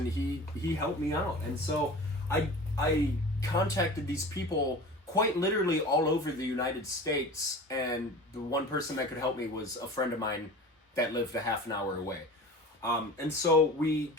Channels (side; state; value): both; normal; correlation 0.37